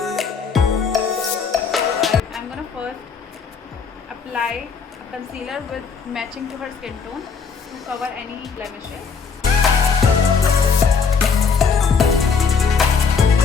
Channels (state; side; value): quieter; right; 5.6 dB